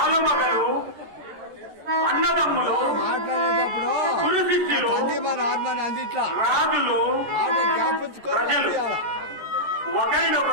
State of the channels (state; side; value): late; left; 14 ms